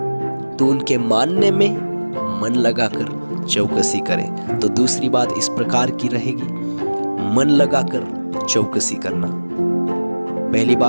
तो उनके मानने में मन लगाकर चौकसी करे। तो दूसरी बात इस प्रकार की रहेगी, मन लगाकर चौकसी करना। पहली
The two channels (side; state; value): both; inverted; correlation -1.00